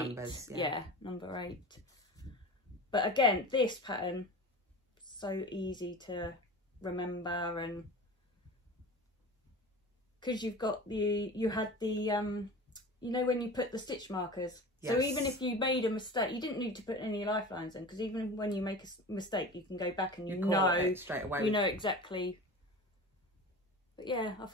yeah, number 8. But again, this pattern so easy to remember, and because you had the you know when you put the stitch markers. Yes. So even if you made a mistake, you didn't need to put any lifelines in, because even when you make a mistake, you can go back and you know straight away. You know exactly. But yeah, I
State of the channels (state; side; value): normal; both; correlation 0.34